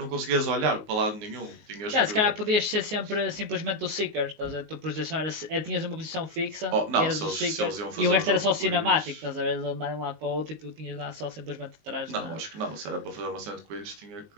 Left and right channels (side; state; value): left; late; 19 ms